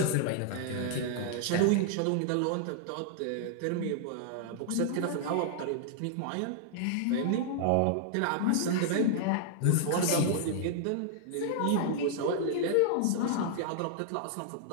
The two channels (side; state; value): both; different; correlation -0.01